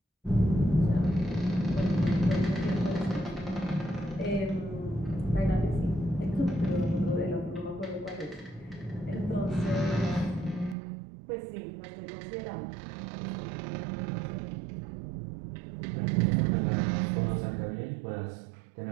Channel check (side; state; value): left; drops out; at 10.8 s